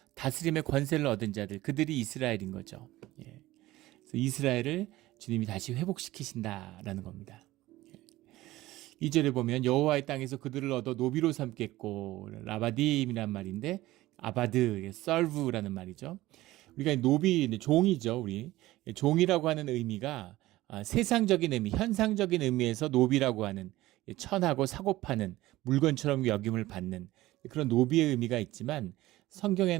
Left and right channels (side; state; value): left; quieter; 17.1 dB